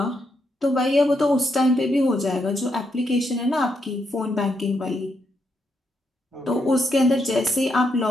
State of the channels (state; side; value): normal; both; correlation 0.80